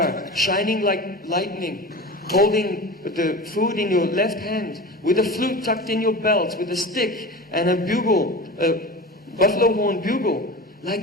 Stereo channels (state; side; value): normal; both; correlation 0.31